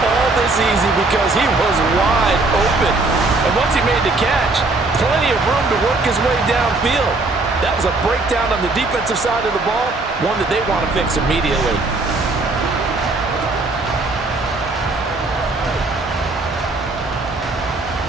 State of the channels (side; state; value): left; quieter; 3.3 dB